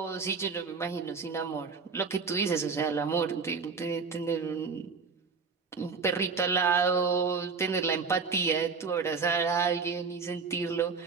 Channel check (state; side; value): quieter; left; 5.0 dB